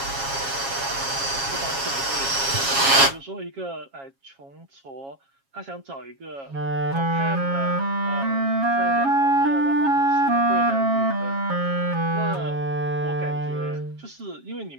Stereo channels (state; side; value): late; left; 7.3 ms